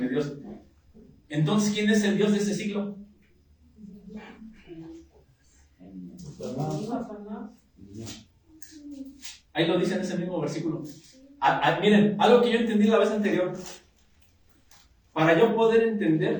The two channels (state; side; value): identical; both; correlation 1.00